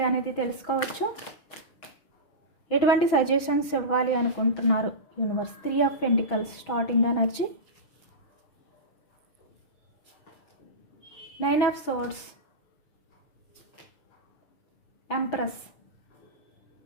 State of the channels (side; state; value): right; late; 6.1 ms